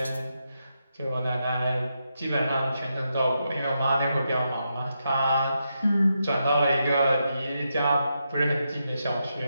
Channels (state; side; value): inverted; both; correlation -0.84